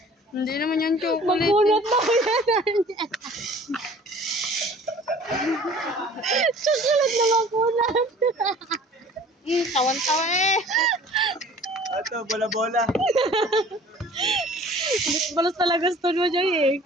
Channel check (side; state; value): both; normal; correlation 0.48